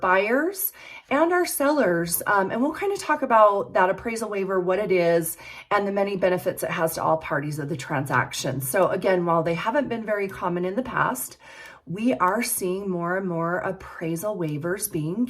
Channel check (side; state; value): both; identical; correlation 1.00